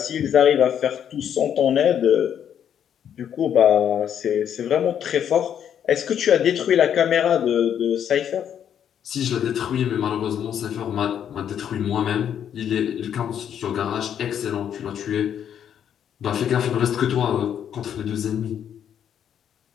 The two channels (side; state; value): right; quieter; 9.1 dB